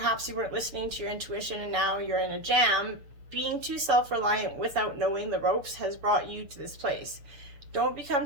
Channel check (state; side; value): late; left; 7.0 ms